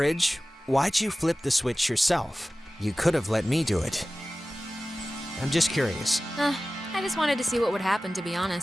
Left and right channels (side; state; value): both; normal; correlation 0.96